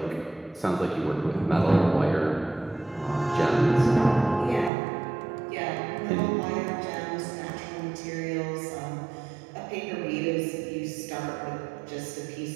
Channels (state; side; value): drops out; left; at 4.7 s